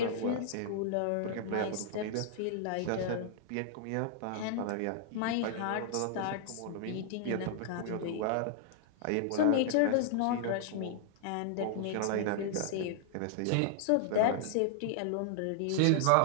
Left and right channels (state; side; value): different; both; correlation -0.01